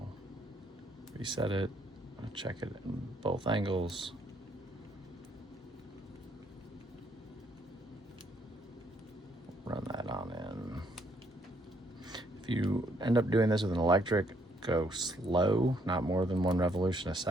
reset it. I'll check it in both angles. Run that on in. If you end up doing this with an electric, go slow, not more than 1 revolution a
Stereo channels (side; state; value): both; normal; correlation 0.69